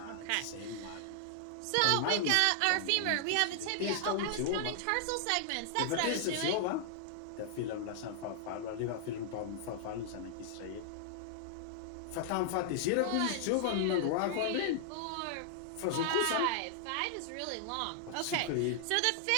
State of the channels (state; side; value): different; both; correlation -0.01